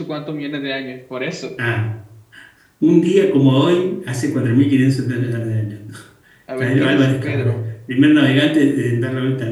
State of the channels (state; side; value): identical; both; correlation 1.00